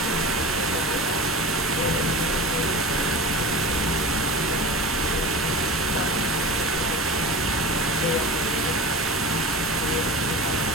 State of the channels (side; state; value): both; normal; correlation 0.32